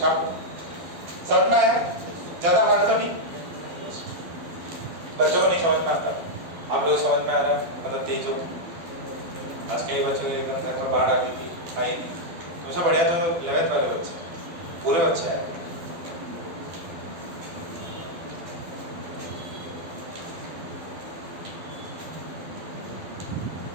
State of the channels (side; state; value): left; late; 12 ms